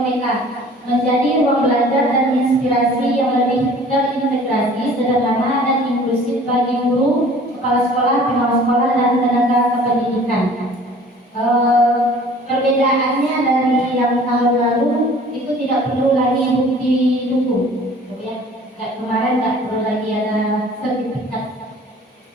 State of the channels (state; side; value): normal; both; correlation 0.49